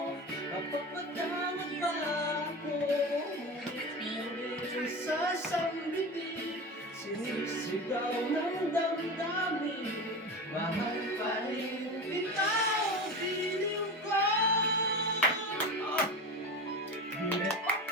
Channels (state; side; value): normal; both; correlation 0.27